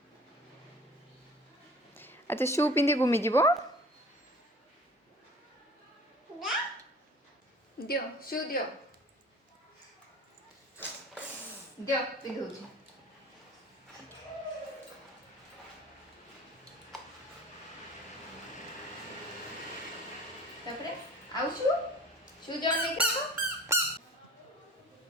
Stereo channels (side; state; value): both; normal; correlation 0.43